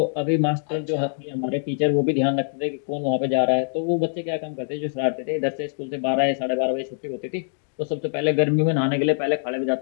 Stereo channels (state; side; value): silent; right; digital silence